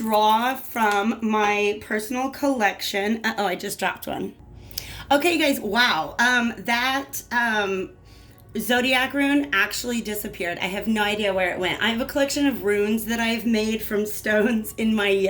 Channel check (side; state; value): both; identical; correlation 1.00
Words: from my personal collection. Uh-oh, I just dropped one. Okay, guys, wow. That zodiac rune actually disappeared. I have no idea where it went. I have a collection of runes that I've made from stones